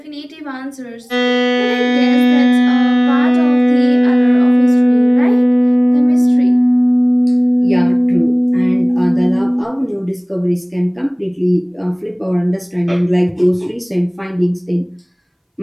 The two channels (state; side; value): identical; both; correlation 1.00